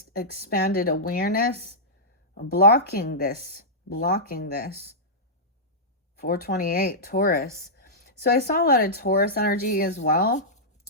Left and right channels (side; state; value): both; normal; correlation -0.13